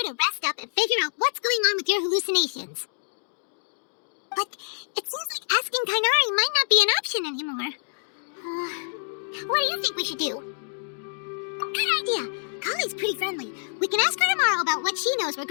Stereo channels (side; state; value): right; silent; digital silence